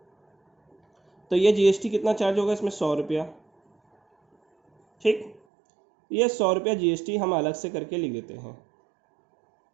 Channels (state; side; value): drops out; left; at 5.4 s